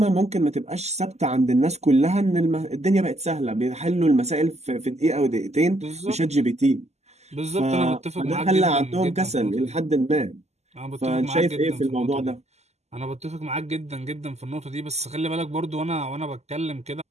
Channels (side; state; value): left; late; 0.32 ms